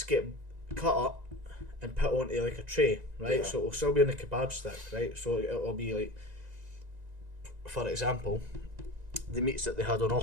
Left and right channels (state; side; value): late; left; 1.9 ms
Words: get cut up and put onto like a tray, right? Yeah. So it'll still be on the kebab stick, right? So it'll be like, for example, the meats that they had on